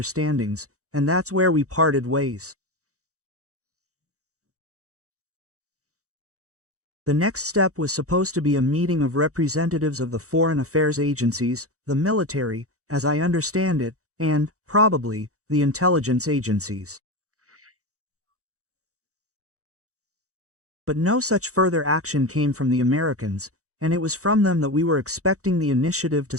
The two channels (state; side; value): late; left; 0.65 ms